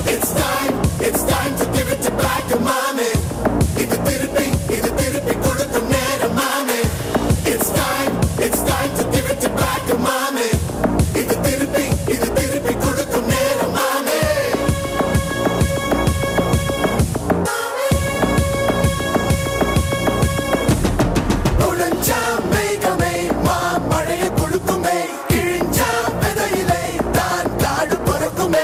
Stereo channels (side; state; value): both; identical; correlation 1.00